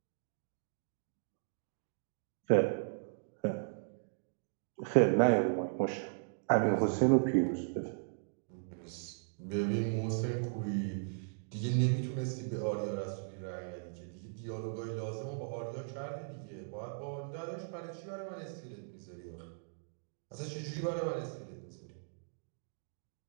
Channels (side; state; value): left; silent; digital silence